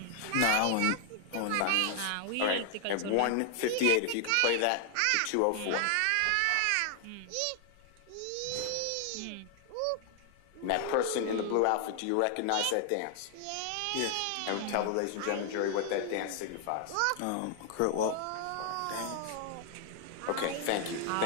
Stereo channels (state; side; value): different; both; correlation 0.00